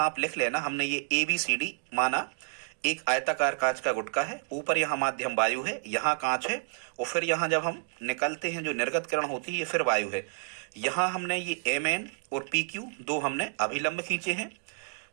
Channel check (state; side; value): silent; left; 58 dB below the other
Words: आप लिख लेना, हमने ये ABCD माना एक आयताकार कांच का गुटका है, ऊपर यहाँ माध्यम वायु है, यहाँ कांच है, और फिर यहाँ जब हम निकलते हैं जो निर्गत किरण होती है ये फिर वायु है। यहाँ हमने ये MN और PQ दो हमने अभिलंब खींचे हैं।